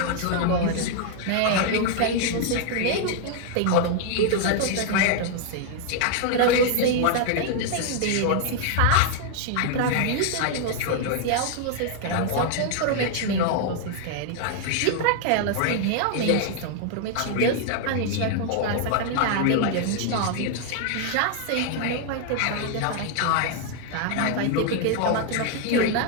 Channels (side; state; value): both; different; correlation 0.00